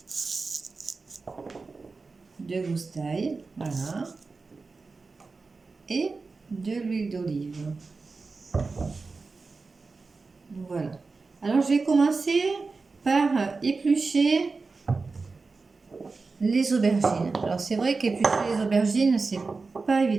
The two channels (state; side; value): quieter; left; 4.1 dB